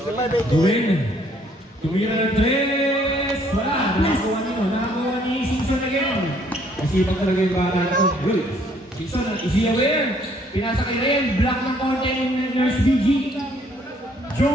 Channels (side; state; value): both; normal; correlation 0.64